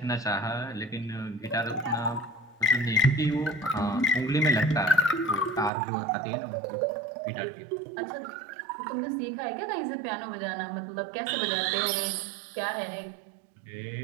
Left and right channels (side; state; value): left; drops out; at 5.7 s